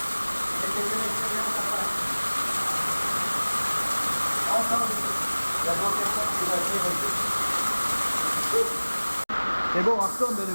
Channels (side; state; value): both; inverted; correlation -1.00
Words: C'est bon, on retourne de